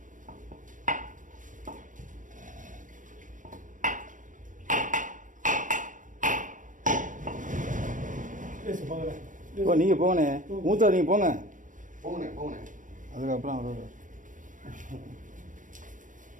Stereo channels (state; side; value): late; left; 0.38 ms